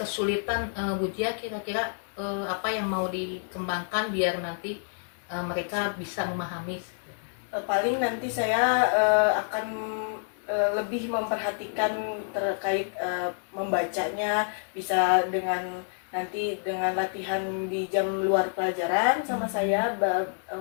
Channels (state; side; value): silent; right; digital silence